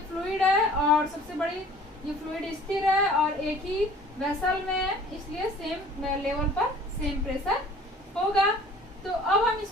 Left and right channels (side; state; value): both; normal; correlation 0.50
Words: फ्लूइड है और सबसे बड़ी ये फ्लूइड स्थिर है और एक ही वेसल में है, इसलिए सेम लेवल पर सेम प्रेशर होगा। तो अब हम